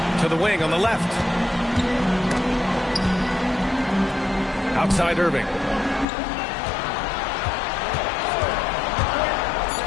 to the wing on the left. Outside Irving.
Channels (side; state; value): right; drops out; at 6.1 s